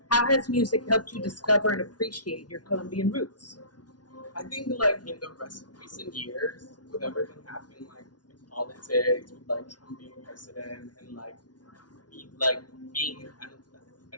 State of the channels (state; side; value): late; right; 0.69 ms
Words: How has music helped you discover and appreciate your Colombian roots? I think like in the recent years, with everything happening like in politics, with like Trump being president, and being